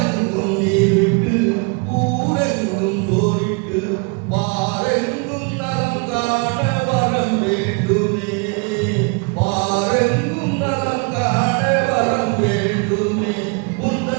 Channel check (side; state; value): left; quieter; 32.3 dB